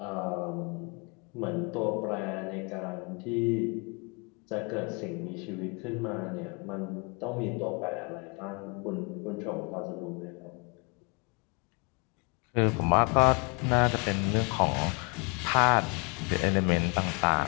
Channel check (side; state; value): right; quieter; 33.1 dB